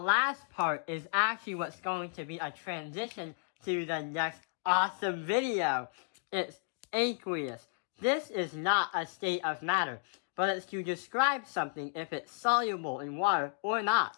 part is actually what's going to be a transition to the next awesome video. It's aqueous. This is not a state of matter, but it's to describe something if it's soluble in water or not.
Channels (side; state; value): right; silent; digital silence